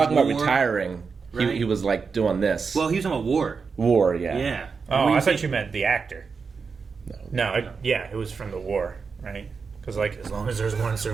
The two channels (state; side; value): quieter; left; 5.2 dB